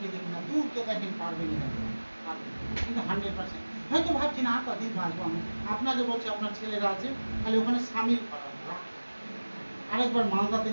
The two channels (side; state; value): both; inverted; correlation -1.00